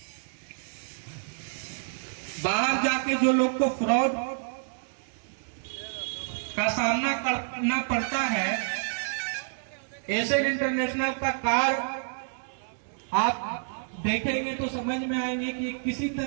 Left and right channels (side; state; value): left; silent; digital silence